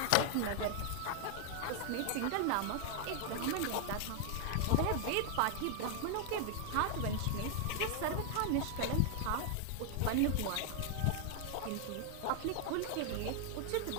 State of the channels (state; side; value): different; both; correlation 0.00